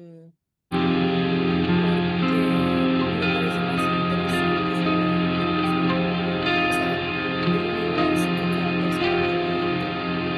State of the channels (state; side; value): identical; both; correlation 1.00